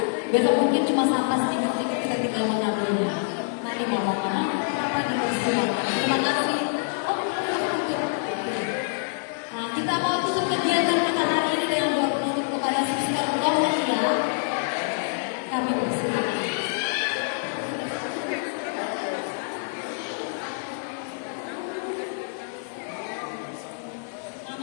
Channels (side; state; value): right; silent; digital silence